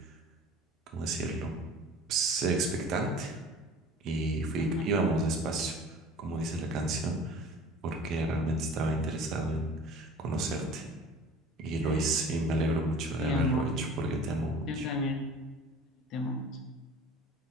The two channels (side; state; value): both; normal; correlation 0.44